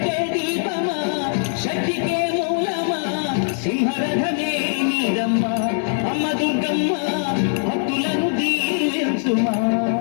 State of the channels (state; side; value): silent; right; digital silence